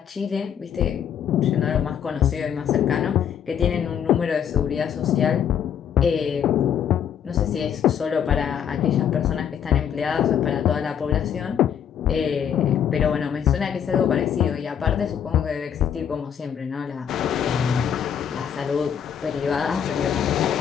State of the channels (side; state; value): right; quieter; 8.6 dB